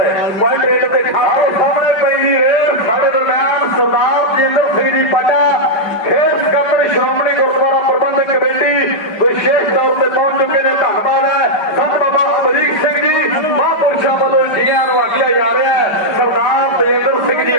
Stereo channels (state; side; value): late; right; 5.3 ms